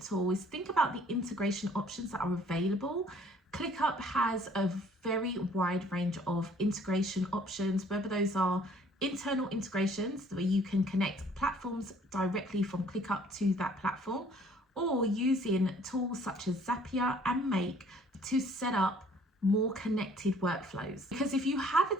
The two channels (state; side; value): normal; both; correlation 0.58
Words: tool, is think about the integration options that are available. ClickUp has a very wide range of integration options, whether those are internal integrations where you can connect platforms directly from ClickUp to that platform, or using tools such as Zapier and Make to set up more connected workflows. Because if you have a